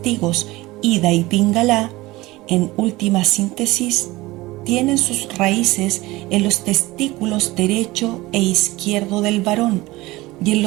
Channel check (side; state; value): left; quieter; 19.8 dB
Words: Ida y Pingala, en última síntesis, tienen sus raíces en los testículos derecho e izquierdo del varón y en